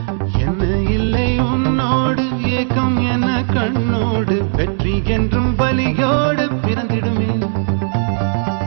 என்ன இல்லை உன்னோடு ஏக்கம் என கண்ணோடு வெற்றி என்றும் பலியோடு பிறந்திடுமே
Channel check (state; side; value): silent; left; digital silence